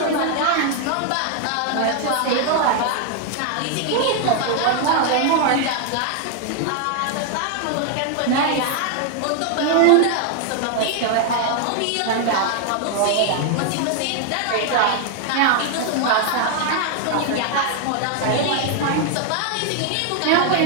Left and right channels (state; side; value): different; both; correlation 0.00